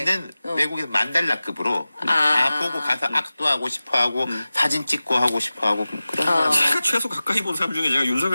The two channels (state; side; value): inverted; both; correlation -0.97